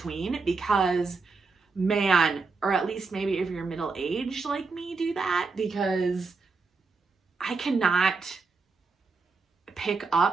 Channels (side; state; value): left; quieter; 4.3 dB